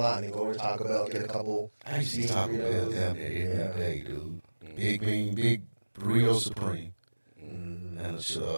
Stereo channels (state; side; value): inverted; both; correlation -1.00